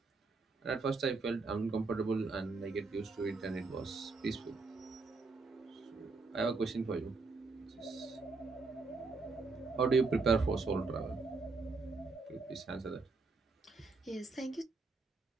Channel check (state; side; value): quieter; left; 4.0 dB